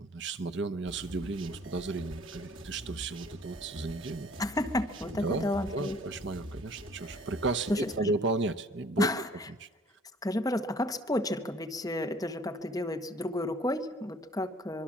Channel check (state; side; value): normal; both; correlation 0.55